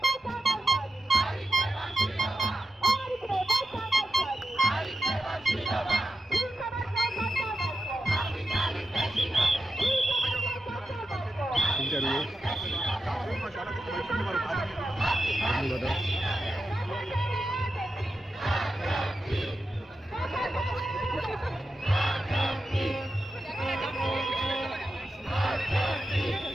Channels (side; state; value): both; normal; correlation 0.89